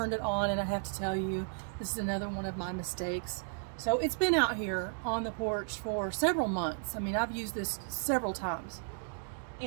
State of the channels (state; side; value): silent; left; digital silence